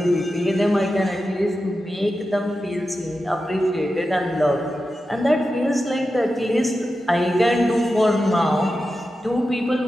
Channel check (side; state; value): both; normal; correlation 0.91